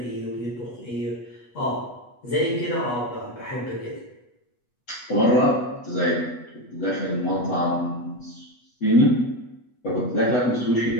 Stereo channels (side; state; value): right; late; 8.2 ms